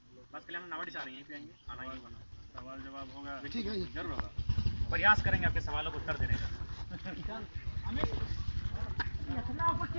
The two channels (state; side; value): inverted; both; correlation -1.00